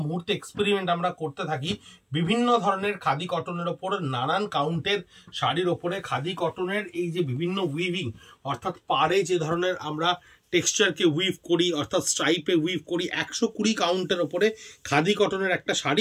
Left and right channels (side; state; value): both; identical; correlation 1.00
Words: মুহূর্তে এক্সপেরিমেন্ট আমরা করতে থাকি বিভিন্ন ধরনের খাদি কটনের ওপর, নানান কাউন্টের শাড়ির ওপরে খাদি কটনের এই যে বিভিন্ন উইভিং, অর্থাৎ পাড়ে যে ধরনের আমরা টেক্সচারকে উইভ করি, অর্থাৎ স্ট্রাইপে উইভ করি, 120 কাউন্টের ওপরে খাদি কটনের একটা